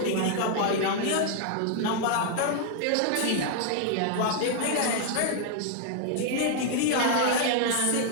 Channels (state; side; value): different; both; correlation 0.00